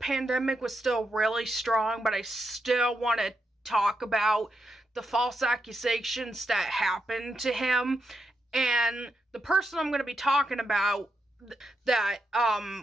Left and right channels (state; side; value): normal; both; correlation 0.84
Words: was still really strong, but I still want to talk about the false accusations that happened to him. And the person I'm going to be talking about that